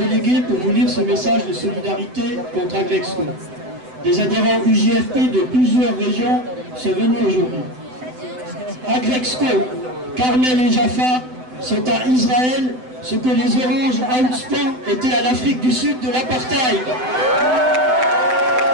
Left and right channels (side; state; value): left; late; 7.9 ms